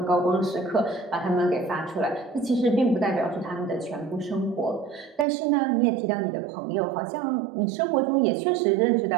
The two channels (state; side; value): drops out; left; at 5.2 s